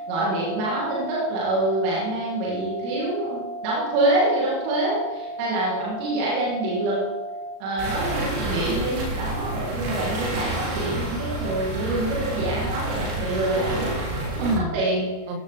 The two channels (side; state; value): left; late; 37 ms